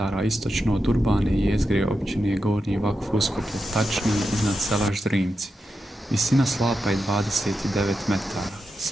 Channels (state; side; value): normal; both; correlation 0.88